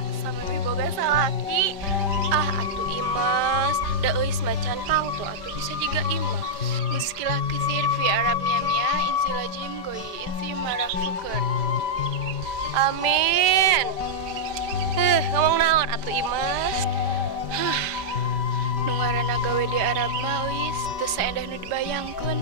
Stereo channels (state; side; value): late; left; 5.1 ms